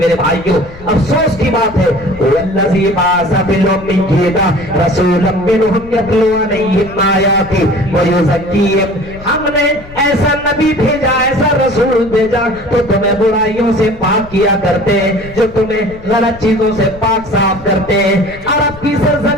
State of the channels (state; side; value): noise; left; rumble, 18 dB below the sound